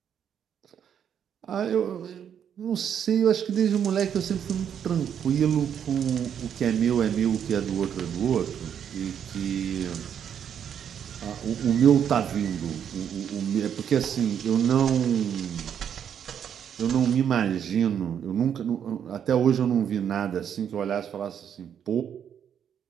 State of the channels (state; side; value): quieter; left; 8.6 dB